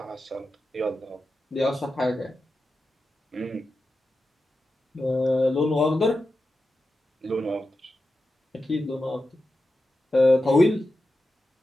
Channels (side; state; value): both; normal; correlation 0.91